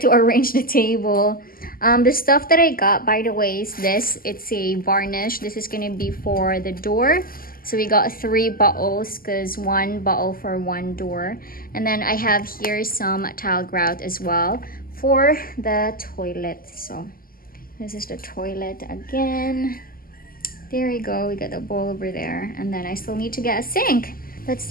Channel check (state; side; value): late; right; 0.42 ms